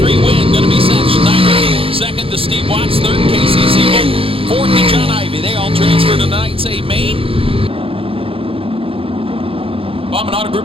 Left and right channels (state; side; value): late; left; 0.27 ms